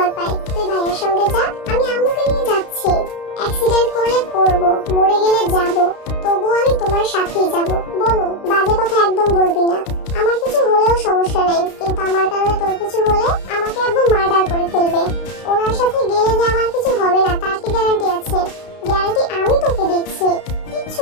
পায়। তুই ভাইয়ের সঙ্গে যা, আমি আম্মুকে নিয়ে যাচ্ছি। অ্যাক্সিডেন্ট করলে করব, মরে গেলে যাব, তবুও আমি তোমার সাথেই যাব। বনু, বাজে কথা একদম বলবি না। আমার কিছু হলেও সমস্যা নেই, কিন্তু আমার কারণে তোর কিছু হলে আমাকে আব্বু মার্ডার করে ফেলবে। ওনার সাথে গেলে যে আমার কিছু হবে না তার কি গ্যারান্টি আছে? গ্যারান্টি আমি তোকে দিচ্ছি, কিচ্ছু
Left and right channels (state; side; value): late; right; 32 ms